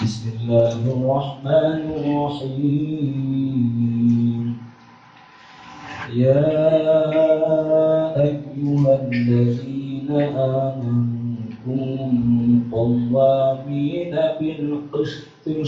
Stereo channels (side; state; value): both; identical; correlation 1.00